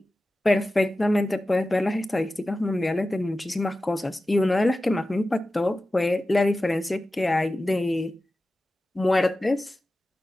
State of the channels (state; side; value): normal; both; correlation 0.95